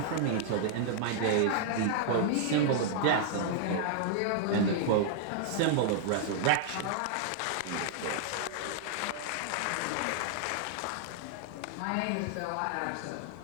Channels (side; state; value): both; different; correlation -0.01